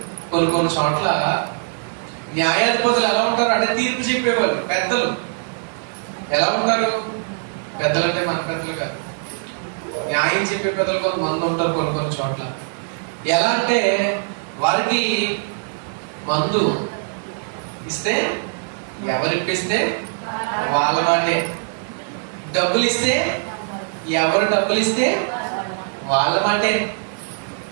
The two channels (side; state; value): left; silent; digital silence